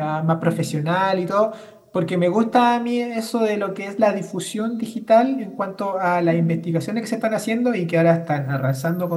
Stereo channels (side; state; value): both; identical; correlation 1.00